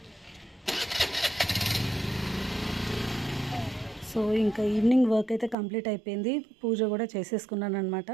సో ఇంకా ఈవినింగ్ వర్క్ అయితే కంప్లీట్ అయిపోయింది. పూజ కూడా చేసేసుకున్నాను అనమాట.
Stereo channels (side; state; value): left; drops out; at 5.6 s